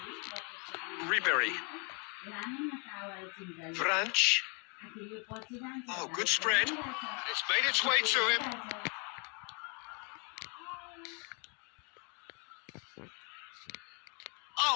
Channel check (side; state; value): right; quieter; 35.1 dB